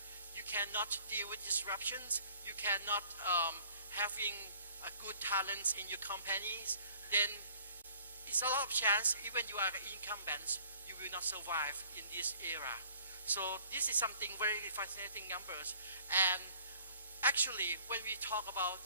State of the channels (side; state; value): both; inverted; correlation -0.54